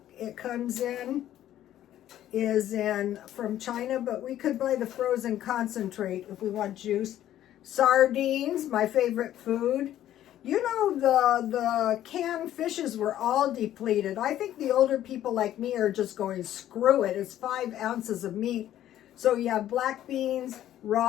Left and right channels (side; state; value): right; quieter; 12.3 dB